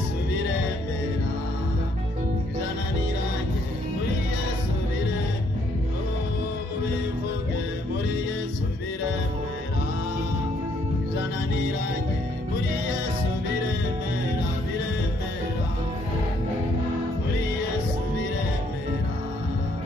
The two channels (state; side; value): normal; both; correlation 0.68